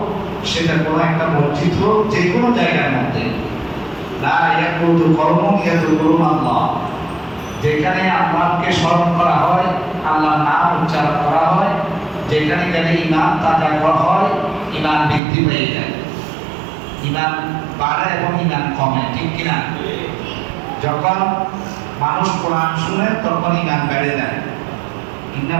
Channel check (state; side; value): drops out; left; at 15.2 s